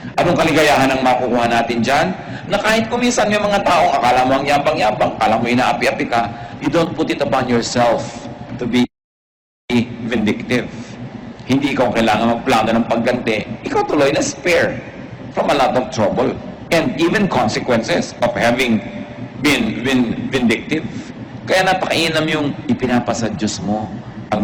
Anong kaligayahan ang makukuha natin dyan? Na kahit kuminsan yung mga taong akala mo ang yabang-yabang, akala mo inaapi-api ka, you don't put it upon yourself to be vindictive. Hindi ikaw kailangan magplano ng pagganti. Ikaw tuloy na spare from a lot of trouble and even consequences of having been vindictive. Kaya napakainam yung ipinapasa Diyos mo ang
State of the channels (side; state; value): both; identical; correlation 1.00